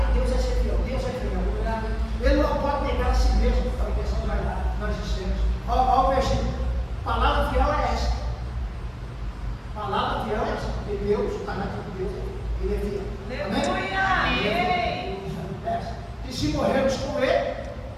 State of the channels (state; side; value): identical; both; correlation 1.00